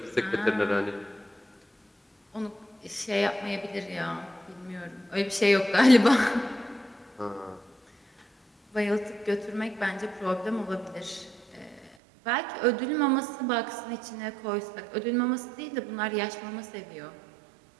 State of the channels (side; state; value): left; drops out; at 12.0 s